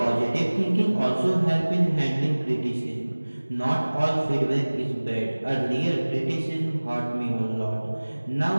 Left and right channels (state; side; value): inverted; both; correlation -1.00